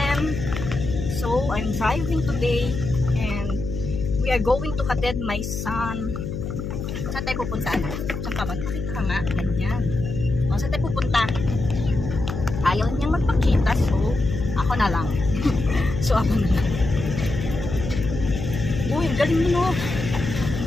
So, I'm driving today and we are going to hatid my son. Saan tayo pupunta? Saan ka ba? Pakita ka nga. Ganyan. Saan tayo pupunta? Ayaw niyang magpakita, so ako na lang. So ako na lang. Uy, ang galing mo, no?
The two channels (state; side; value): noise; left; hum, 5 dB below the sound